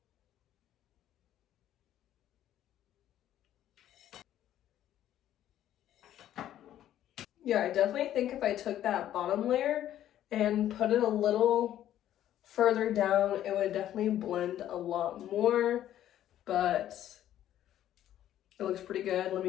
Yeah, I definitely think if I took that bottom layer and put it a little further down, it would definitely blend a lot more, but it looks pretty good. Let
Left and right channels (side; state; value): right; quieter; 11.9 dB